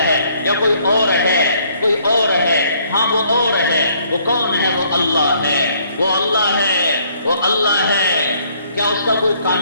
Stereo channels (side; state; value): both; inverted; correlation -0.65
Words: ہے؟ یا کوئی اور ہے؟ کوئی اور ہے؟ ہاں وہ اور ہے۔ وہ کون ہے؟ وہ اللہ ہے، وہ اللہ ہے، وہ اللہ ہے۔ کیا اس کا کوئی